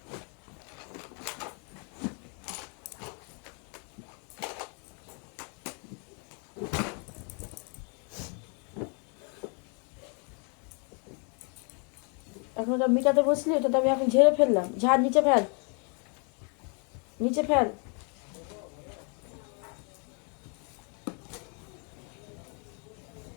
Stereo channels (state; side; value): quieter; right; 38.0 dB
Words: এখন ওটা মিটাতে বসলি, ওটা তো আমি এখন ঝেড়ে ফেললাম। ঝাড় নিচে ফেল, নিচে ফেল।